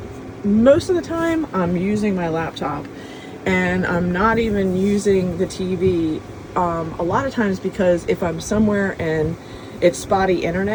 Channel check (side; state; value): both; identical; correlation 1.00